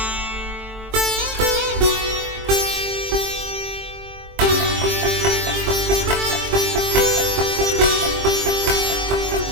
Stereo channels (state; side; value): late; left; 23 ms